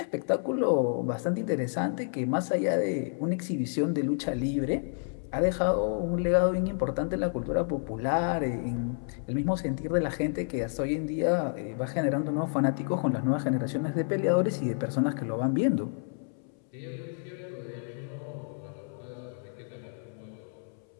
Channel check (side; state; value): right; silent; 58 dB below the other